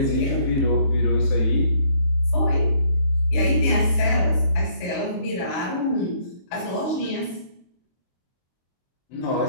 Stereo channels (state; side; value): late; right; 22 ms